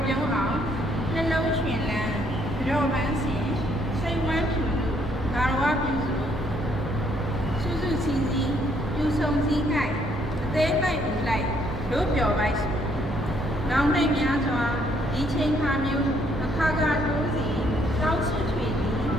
ပြုံးအောင်နှလုံးရွှင်လန်းကြောပန်းစဉ်စိတ်ဝမ်းဖြူလို့ဂါရဝပြုစုစုစုစည်းစည်းပြူဆုံစည်း၌အသေးလိုက်ဦးလိုက်တို့ပျော်ပိုက်စုနောင်နိုင်များစွာဒီချိန်ခါမျိုးအခါခါတိုးစီတောင်းဆွချွေသည်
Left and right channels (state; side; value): normal; both; correlation 0.68